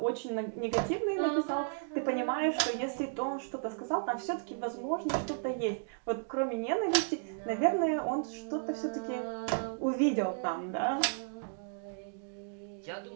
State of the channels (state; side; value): silent; left; digital silence